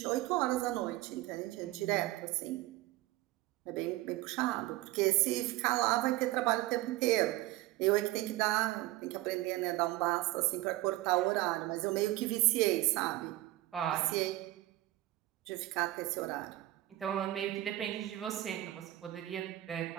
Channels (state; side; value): quieter; left; 17.0 dB